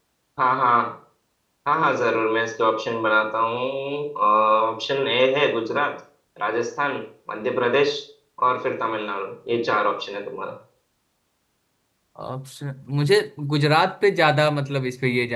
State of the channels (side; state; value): both; identical; correlation 1.00